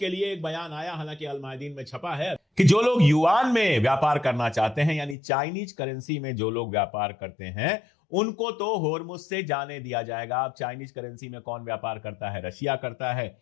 लिए एक बयान आया, हालांकि अल मायदीन में छपा है, कि जो लोग युआन में व्यापार करना चाहते हैं, यानी चाइनीज करेंसी में जो लोग व्यापार करते हैं, उनको तो हॉर्मुज से जाने दिया जाएगा। अब चाइनीज करेंसी में कौन व्यापार करता है? रशिया करता है,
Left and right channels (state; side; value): drops out; right; at 5.2 s